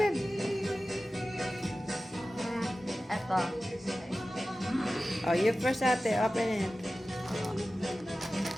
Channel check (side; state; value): both; normal; correlation 0.95